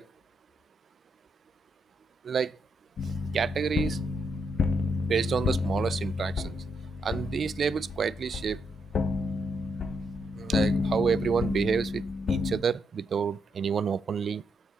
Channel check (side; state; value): both; normal; correlation 0.79